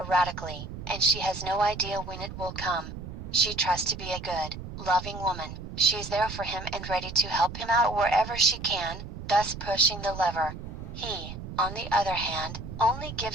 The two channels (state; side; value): noise; right; rumble, 9 dB below the sound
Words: and she has no idea when it will come. She trusts to be a good, loving woman. She's there for him and ready to help him out wherever she can, thus pushing the lever. He, on the other hand, only